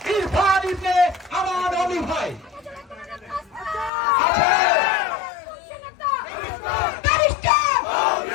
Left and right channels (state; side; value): drops out; right; at 3.9 s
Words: ইরফান ইবনে আমান আলী ভাই